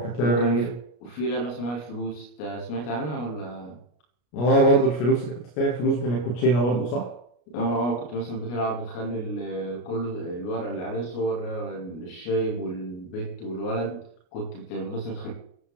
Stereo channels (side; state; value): right; late; 33 ms